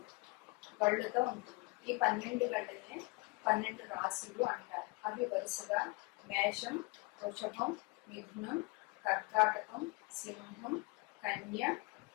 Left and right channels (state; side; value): quieter; right; 26.5 dB